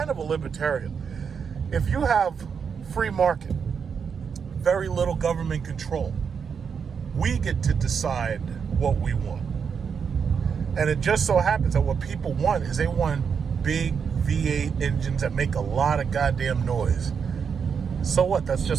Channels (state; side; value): quieter; left; 6.5 dB